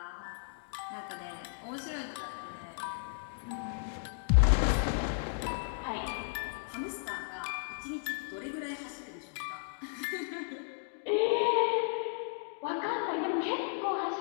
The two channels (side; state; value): right; silent; digital silence